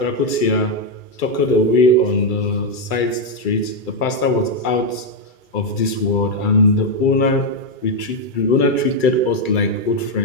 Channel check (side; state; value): right; late; 2.3 ms